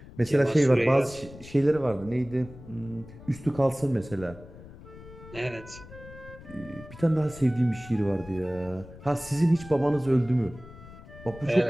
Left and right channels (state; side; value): noise; left; rumble, 17 dB below the sound